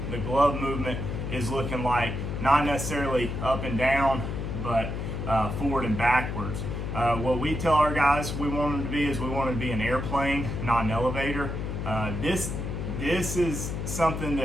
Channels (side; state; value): left; noise; hum, 4 dB below the sound